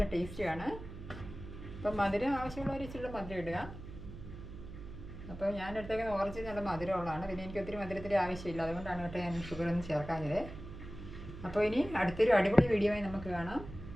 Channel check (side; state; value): right; noise; hum, 12 dB below the sound